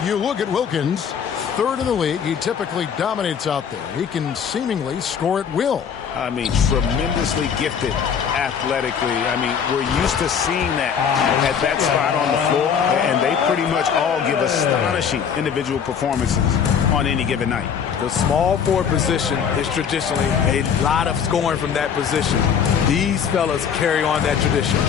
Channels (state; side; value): quieter; right; 7.4 dB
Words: You look at Wilkins, third in the league. He typically dominates out there. He can seemingly score at will. I mean, tremendously gifted athletically. I mean, we're used to seeing that at that spot on the floor, and they pretty much all give astonishing individual performances on any given night. The small forward position is traditionally a lot of scoring from that position. These fellas carry on that tradition.